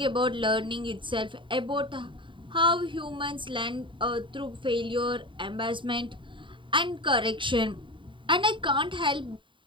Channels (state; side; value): late; left; 0.24 ms